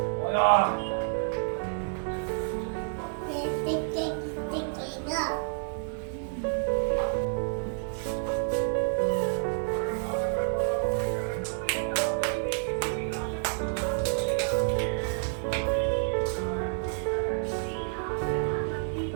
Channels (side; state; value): left; silent; digital silence